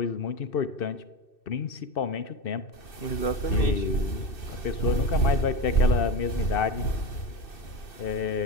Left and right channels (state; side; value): late; right; 2.6 ms